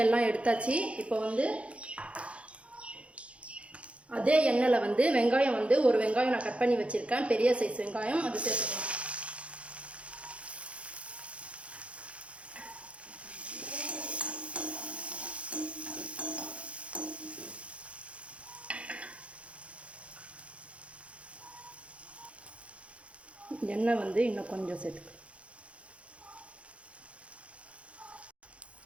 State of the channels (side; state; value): left; late; 0.062 ms